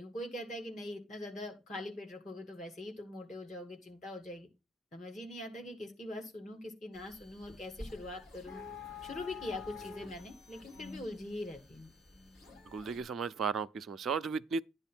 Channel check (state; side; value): normal; both; correlation 0.62